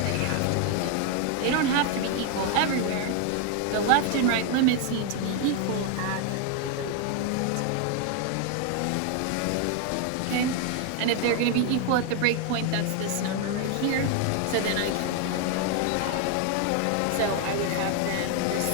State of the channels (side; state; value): both; different; correlation 0.01